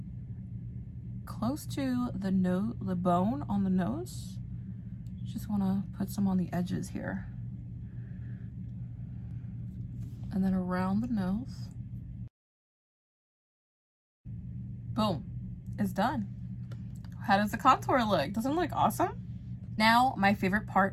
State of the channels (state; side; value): identical; both; correlation 1.00